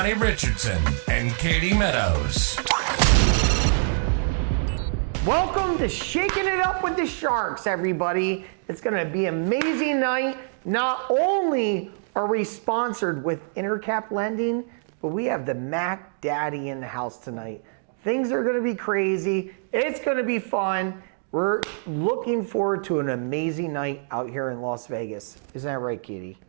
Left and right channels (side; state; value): left; silent; digital silence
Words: Richardson and Katie Meadows. Welcome to Shaking It Up with the Sharks, everybody. It's going to be an amazing night. Not only are we sponsored with Intercap Lending, but we have the Mac Daddy in the house tonight. Things are going to be crazy. It's going to be fun. We're looking forward to an amazing night out here in Las Vegas. Isn't that right, Katie?